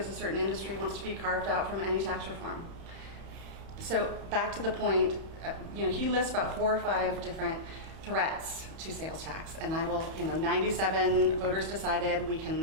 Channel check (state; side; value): late; left; 31 ms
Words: a certain industry wants to be carved out from any tax reform. So back to the point, he lists about 4 or 5 different threats to sales tax, and I will, 97 voters decided